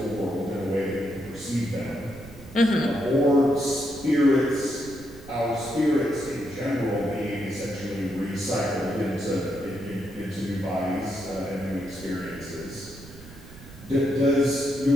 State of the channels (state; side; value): noise; right; rumble, 17 dB below the sound